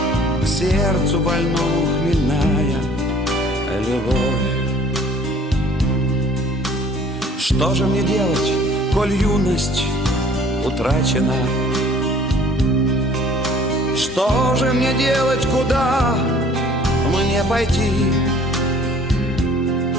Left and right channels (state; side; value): normal; both; correlation 0.54